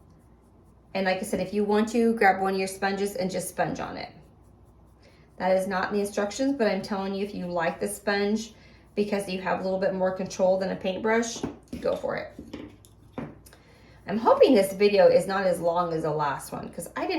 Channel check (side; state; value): both; identical; correlation 1.00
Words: And like I said, if you want to, grab one of your sponges and just sponge on it. That is not in the instructions, but I'm telling you, if you like the sponge because you have a little bit more control than a paintbrush, go for it. I'm hoping this video is not as long as the last one, because I did